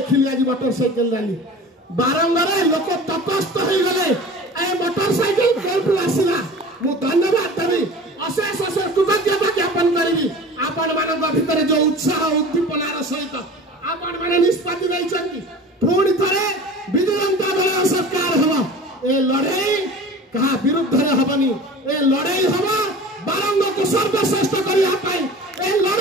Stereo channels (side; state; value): both; normal; correlation 0.38